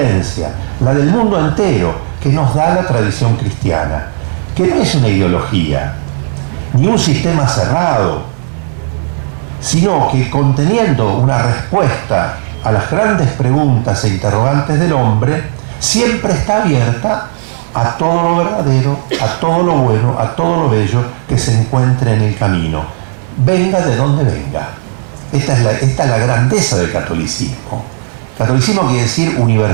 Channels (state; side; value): silent; left; digital silence